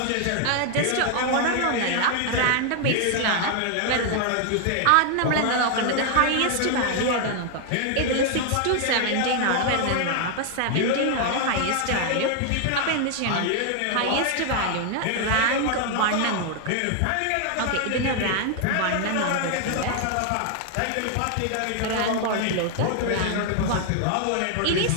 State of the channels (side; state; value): both; different; correlation 0.00